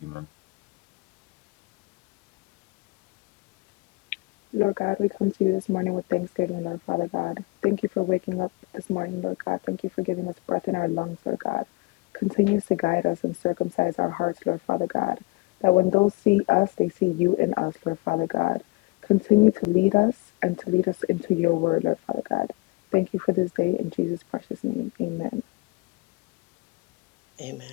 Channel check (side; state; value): right; quieter; 25.7 dB